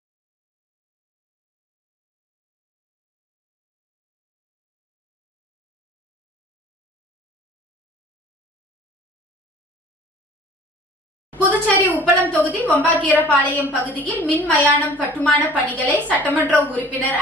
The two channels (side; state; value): both; normal; correlation 0.48